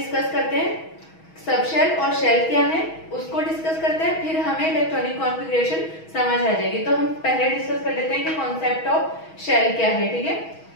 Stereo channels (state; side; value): late; right; 6.3 ms